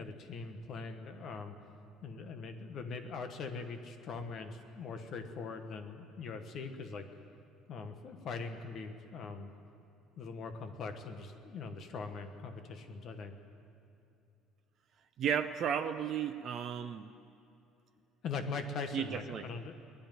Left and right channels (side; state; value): both; normal; correlation 0.51